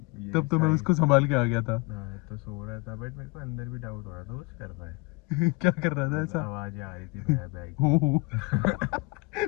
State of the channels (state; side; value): quieter; right; 25.2 dB